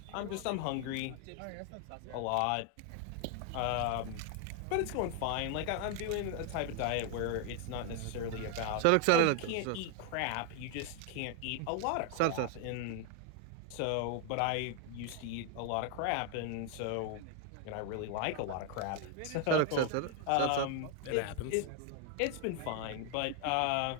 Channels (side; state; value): both; different; correlation 0.00